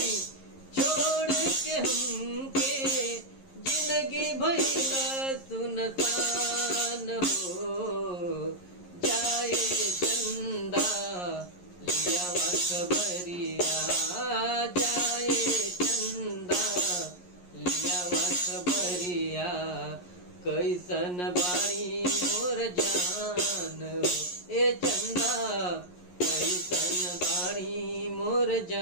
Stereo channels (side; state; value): right; late; 11 ms